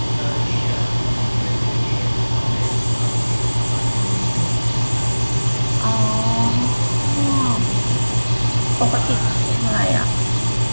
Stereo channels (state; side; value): inverted; both; correlation -1.00